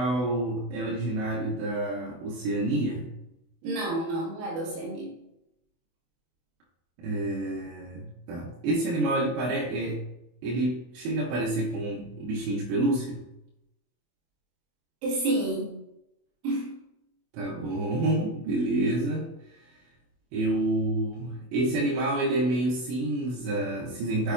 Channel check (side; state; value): left; late; 24 ms